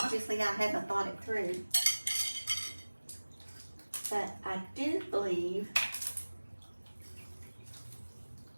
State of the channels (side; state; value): both; inverted; correlation -1.00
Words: I haven't thought it through, but I do believe